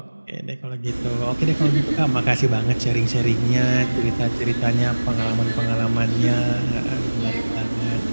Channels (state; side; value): inverted; both; correlation -1.00